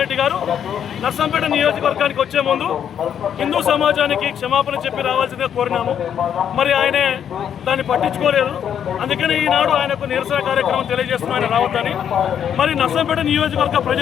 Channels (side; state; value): right; quieter; 8.8 dB